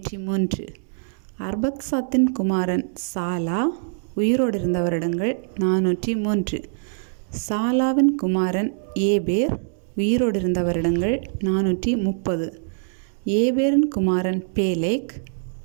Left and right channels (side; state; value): left; silent; digital silence